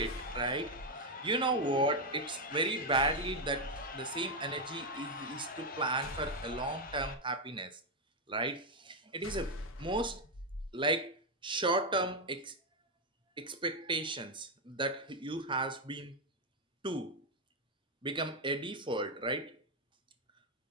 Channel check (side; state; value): both; normal; correlation 0.03